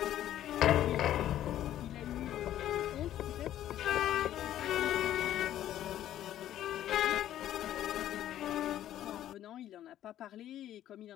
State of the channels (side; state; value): right; quieter; 12.1 dB